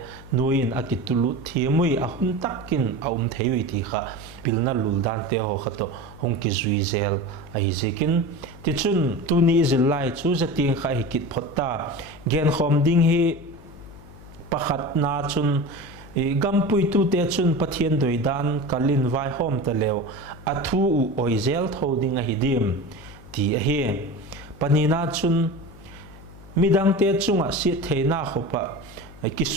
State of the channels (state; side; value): noise; left; hum, 19 dB below the sound